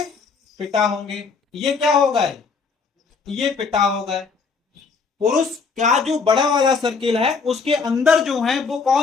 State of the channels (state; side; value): quieter; right; 5.0 dB